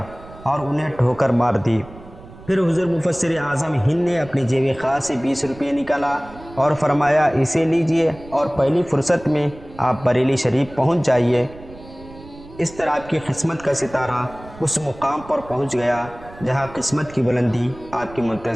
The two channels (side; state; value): right; noise; rumble, 19 dB below the sound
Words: اور انہیں ٹھوکر مار دی۔ پھر حضور مفسر اعظم ہند نے اپنی جیب خاص سے 20 روپے نکالا اور فرمایا، اسے لیجئے اور پہلی فرصت میں آپ بریلی شریف پہنچ جائیے۔ اس طرح آپ کی قسمت کا ستارہ اس مقام پر پہنچ گیا جہاں قسمت کی بلندی آپ کی